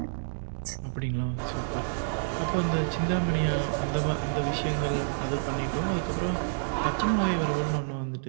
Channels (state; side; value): silent; left; digital silence